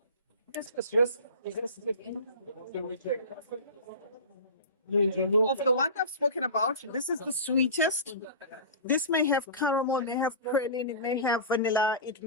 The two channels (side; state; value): both; inverted; correlation -0.32